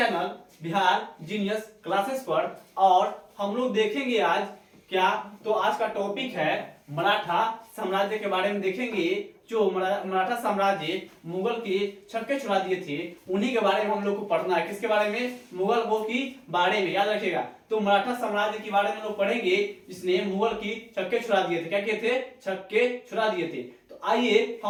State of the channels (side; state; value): both; identical; correlation 1.00